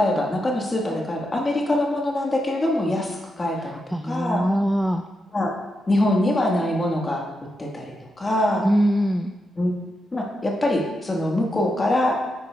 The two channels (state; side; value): normal; both; correlation 0.85